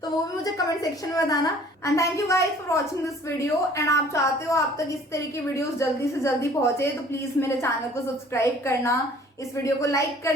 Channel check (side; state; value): both; normal; correlation 0.53